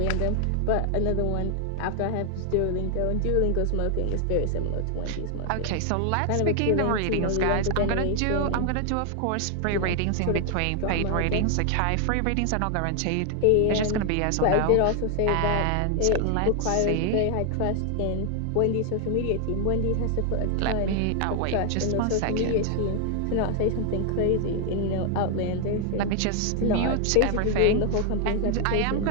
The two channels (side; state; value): both; different; correlation 0.00